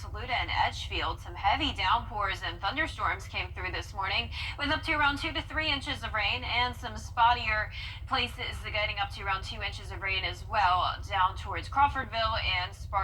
and Edgefield. Some heavy downpours and thunderstorms came through this morning, with up to around 2 to 3 inches of rain, and some spottier places getting up to around 2 inches of rain as well, down towards Crawfordville and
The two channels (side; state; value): both; identical; correlation 1.00